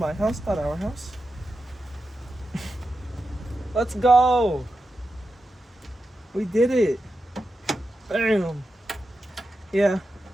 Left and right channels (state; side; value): normal; both; correlation 0.90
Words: house, not our house. Let's go. We did it. Bam. Yeah,